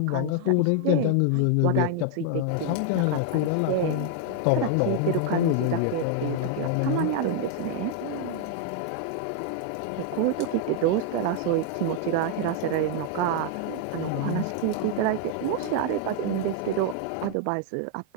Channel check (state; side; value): different; both; correlation 0.00